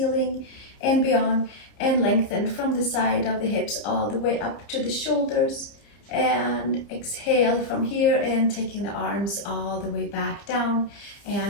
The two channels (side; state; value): right; late; 30 ms